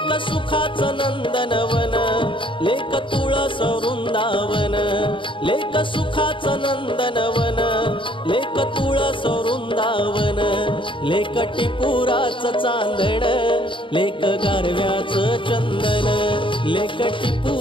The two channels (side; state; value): right; late; 0.25 ms